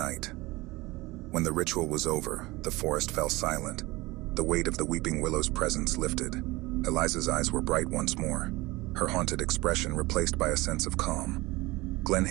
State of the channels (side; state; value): left; quieter; 21.3 dB